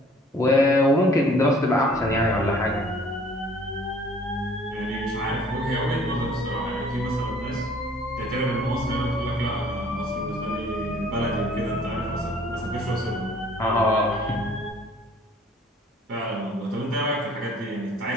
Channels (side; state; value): both; normal; correlation 0.55